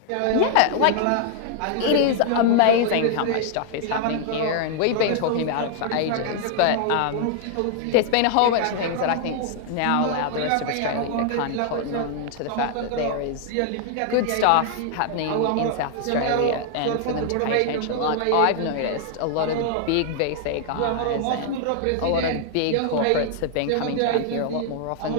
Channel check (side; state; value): both; different; correlation 0.00